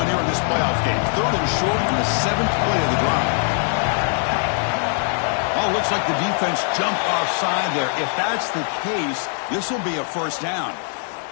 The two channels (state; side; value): silent; right; 57 dB below the other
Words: here in this playoff game. Third and short on the 7th play of the drive. Oh, looks like the defense jumped offside there. If that's the case, this will be a first down.